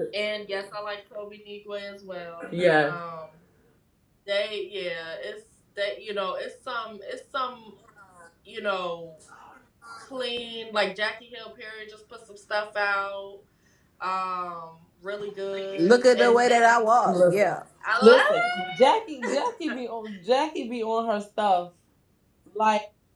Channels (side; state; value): both; identical; correlation 1.00